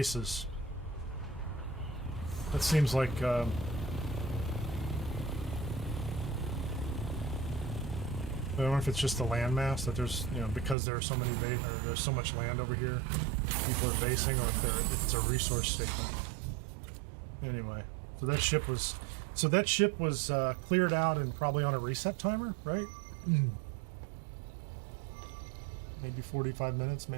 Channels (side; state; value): left; drops out; at 10.8 s